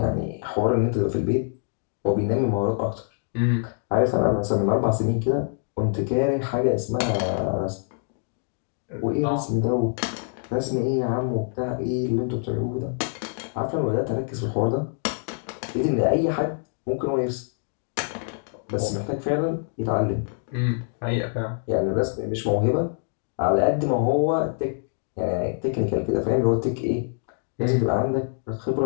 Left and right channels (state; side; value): silent; right; digital silence